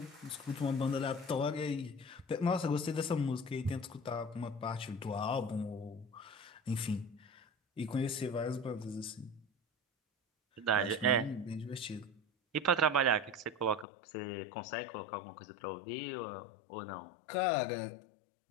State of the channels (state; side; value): drops out; right; at 13.9 s